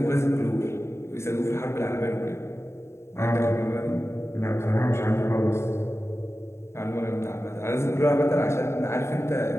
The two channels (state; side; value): late; right; 0.13 ms